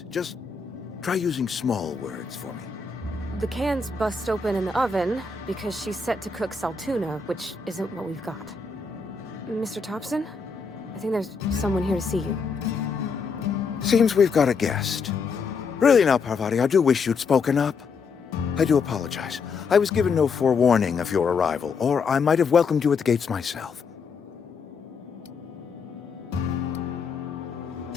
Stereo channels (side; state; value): right; quieter; 5.1 dB